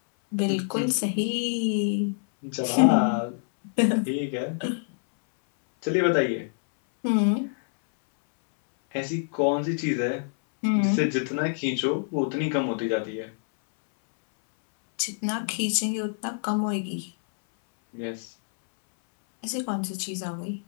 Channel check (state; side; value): silent; right; 61 dB below the other